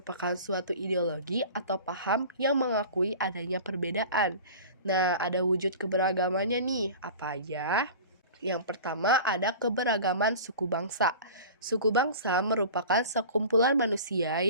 suatu ideologi atau paham yang mengakui adanya perbedaan. Nah, ada wujud keberagamannya nih, apa aja? Yang pertama ada keberagaman suku bangsa. Suku bangsa merupakan sekumpulan manusia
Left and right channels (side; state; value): both; inverted; correlation -0.38